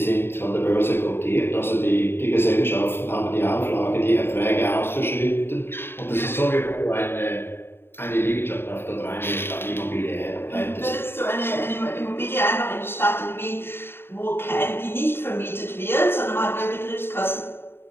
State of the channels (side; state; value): right; late; 0.11 ms